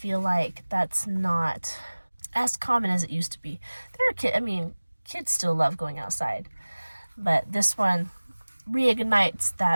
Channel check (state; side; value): inverted; both; correlation -1.00